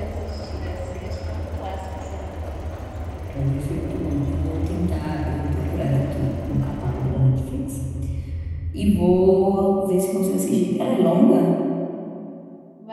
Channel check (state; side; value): identical; both; correlation 1.00